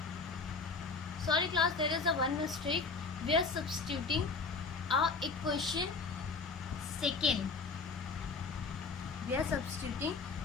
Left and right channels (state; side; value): quieter; right; 4.5 dB